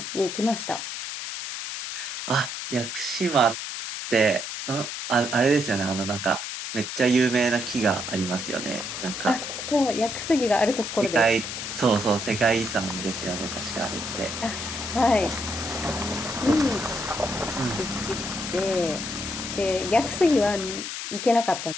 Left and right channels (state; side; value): noise; left; hiss, 6 dB below the sound